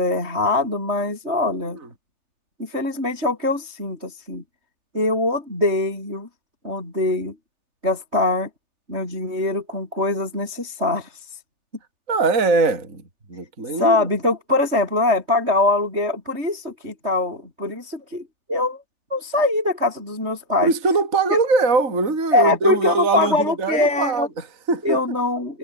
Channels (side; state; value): left; late; 3.2 ms